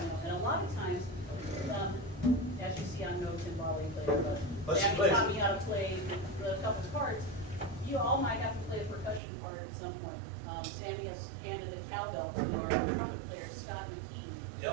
you know. And a lot of times, as you see, I'm no timbale player, But she Jackie plays taught it. me how to play the couple parts. You all might have to play a percussion part at some point. Sandy has handed the cowbell to our trumpet player, Scott McKee.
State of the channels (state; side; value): drops out; left; at 9.2 s